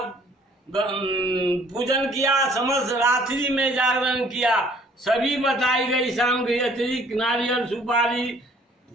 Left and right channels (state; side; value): normal; both; correlation 0.58